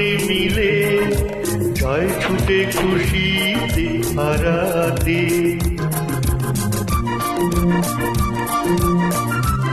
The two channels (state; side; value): identical; both; correlation 1.00